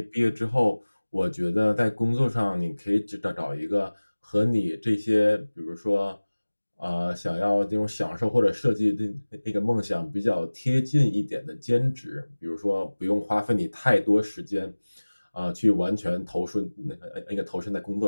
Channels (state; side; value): inverted; both; correlation -1.00